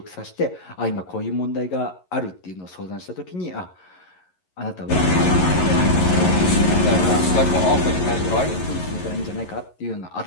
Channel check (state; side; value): late; right; 11 ms